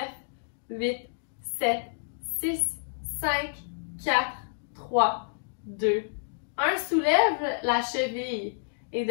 8, 7, 6, 5, 4, 3, 2, 1. Soulève la cheville. Et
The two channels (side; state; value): right; silent; digital silence